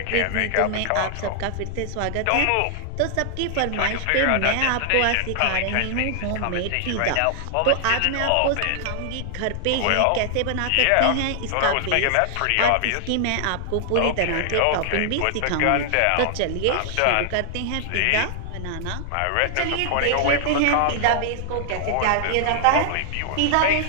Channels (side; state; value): both; different; correlation 0.00